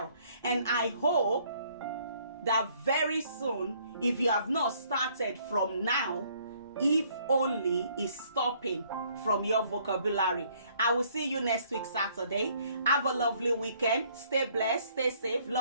And I hope that very soon, if you have not started from now, if only is stopping from your vocabulary. I will see you next week Saturday. Have a lovely weekend. Stay blessed, stay safe.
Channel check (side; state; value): both; inverted; correlation -0.63